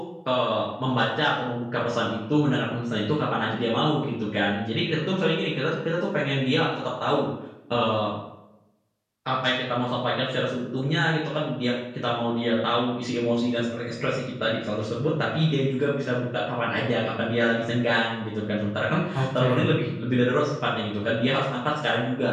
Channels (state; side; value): identical; both; correlation 1.00